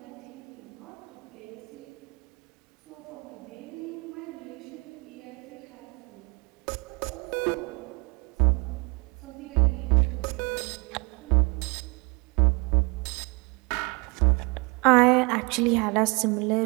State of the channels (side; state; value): left; quieter; 29.4 dB